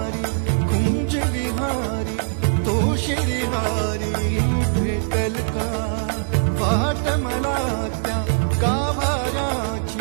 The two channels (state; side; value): silent; left; digital silence